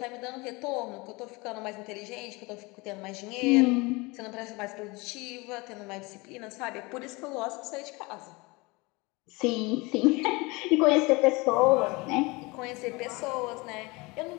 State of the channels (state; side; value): quieter; right; 25.0 dB